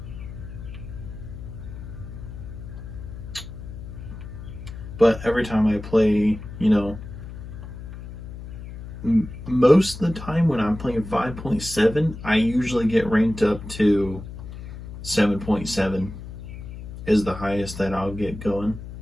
But every time I play, most of the time when I'm playing 5.7, I usually get ranked up to 7.7 is the highest that I'll get going.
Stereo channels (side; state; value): left; noise; hum, 11 dB below the sound